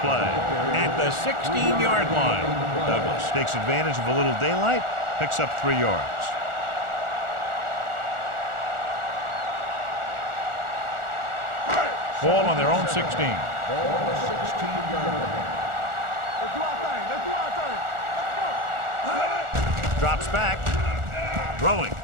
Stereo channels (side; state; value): left; late; 1.4 ms